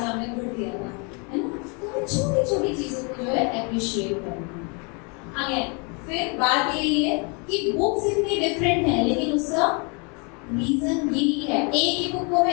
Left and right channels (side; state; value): right; quieter; 34.0 dB